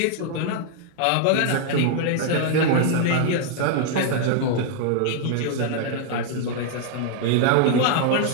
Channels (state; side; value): different; both; correlation -0.01